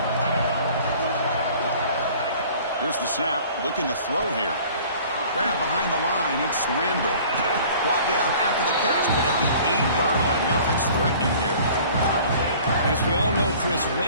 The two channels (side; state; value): both; inverted; correlation -0.49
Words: Here's the snap, looking to throw here. Grab behind the line, it's Randall. Brought down after the catch, but at the 8-yard line, the offense threatening here. As we all know, Chris,